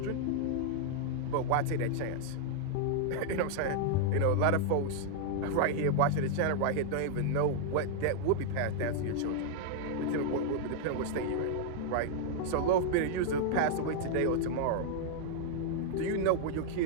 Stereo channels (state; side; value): different; both; correlation -0.01